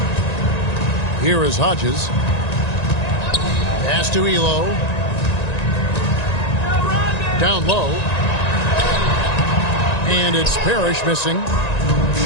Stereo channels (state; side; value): late; right; 1.9 ms